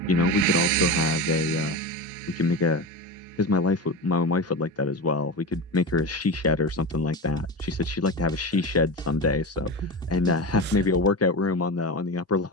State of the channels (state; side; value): normal; both; correlation 0.22